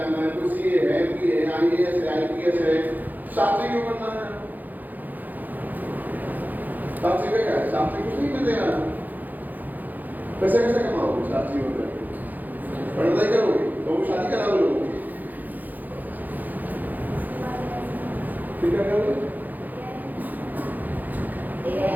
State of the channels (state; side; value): late; left; 0.084 ms